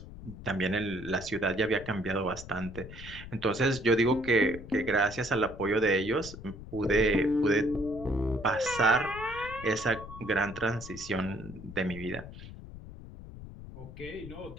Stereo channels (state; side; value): noise; left; rumble, 13 dB below the sound